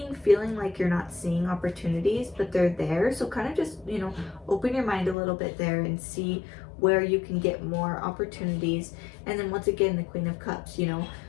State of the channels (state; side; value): drops out; right; at 5.2 s